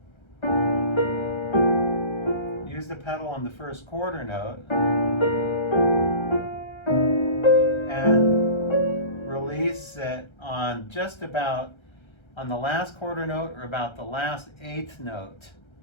on the first quarter note and release it on just about on the last quarter note or about the last eighth note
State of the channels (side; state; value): right; late; 1.3 ms